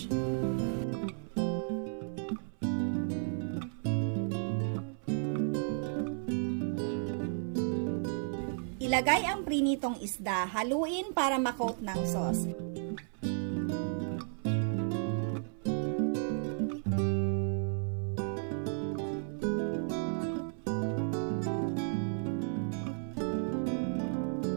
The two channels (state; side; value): silent; left; 55 dB below the other